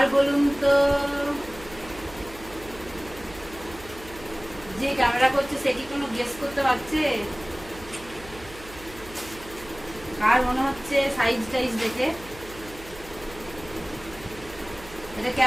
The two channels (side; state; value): right; noise; hum, 18 dB below the sound